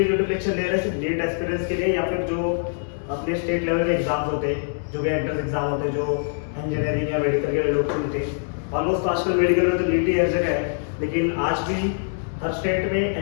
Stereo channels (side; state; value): right; silent; digital silence